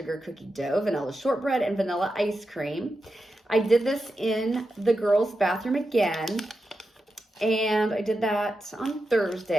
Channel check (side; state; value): both; normal; correlation 0.89